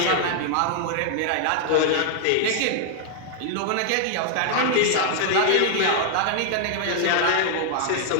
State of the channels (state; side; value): different; both; correlation 0.00